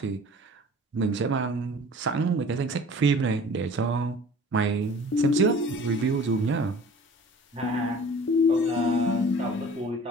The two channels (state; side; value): normal; both; correlation 0.45